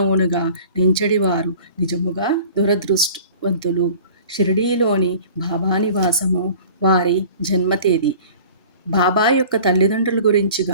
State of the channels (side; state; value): both; inverted; correlation -0.45